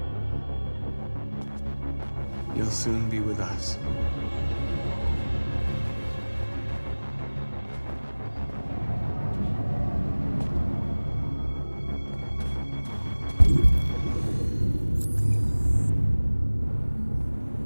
You'll soon be with us.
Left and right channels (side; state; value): both; inverted; correlation -1.00